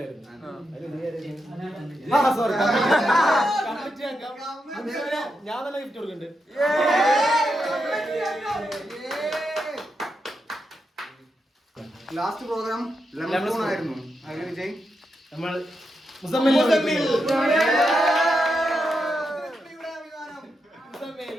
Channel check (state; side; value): normal; both; correlation 0.85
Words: ഞാൻ തന്നെ ഗിഫ്റ്റ് കൊടുക്കുന്നുണ്ട്. ലാസ്റ്റ് പ്രോഗ്രാം ലെമൺ ആയിരുന്നു. അതിൽ വിജയ് നമ്മൾ മുസമ്മിൽ